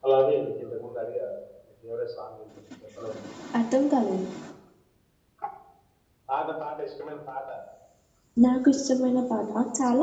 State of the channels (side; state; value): both; identical; correlation 1.00